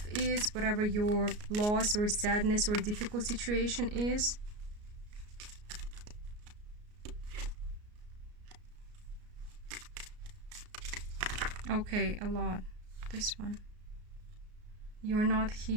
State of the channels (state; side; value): late; left; 33 ms